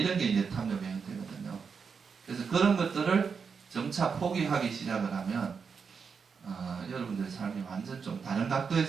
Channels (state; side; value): quieter; left; 5.8 dB